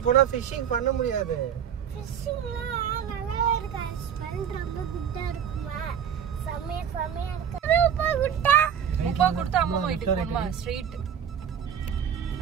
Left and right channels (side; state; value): left; quieter; 8.5 dB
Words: போனா ஃபிஷிங் பண்ண முடியாது. ஃபிஷிங்ல நல்லா இருக்கு. ஸ்மெல் ரொம்ப குட்டா இருக்குமா. சமையா இருக்கு. ரூபா குட்டா. ரூபா கொடுத்து அம்மா வீட்டுக்கு போணுமா? ஸ்ட்ரெயிட்.